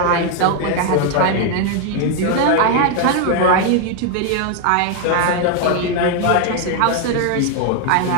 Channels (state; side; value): different; both; correlation 0.01